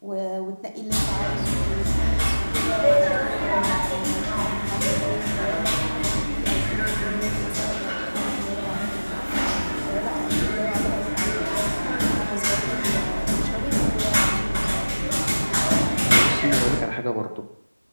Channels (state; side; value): inverted; both; correlation -1.00